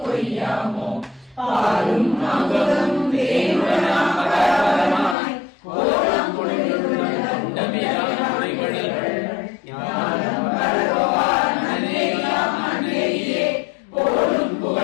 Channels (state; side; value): drops out; right; at 5.2 s